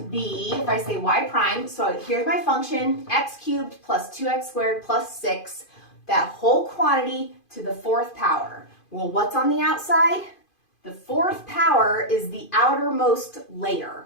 if I say y prime, so here's my function, x cubed plus 2x squared plus 6, that whole quantity to the fourth power. Well, what's on the outside? The fourth power is the outermost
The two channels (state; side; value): late; right; 2.5 ms